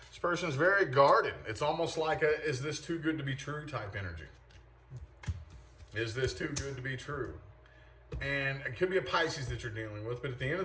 This person is very guarded. It's almost like a, is this too good to be true type energy. Is this too good to be true? And it could be a Pisces that you're dealing with, but at the end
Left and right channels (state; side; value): identical; both; correlation 1.00